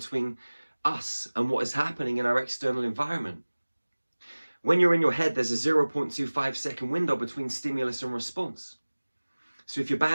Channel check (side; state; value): both; inverted; correlation -1.00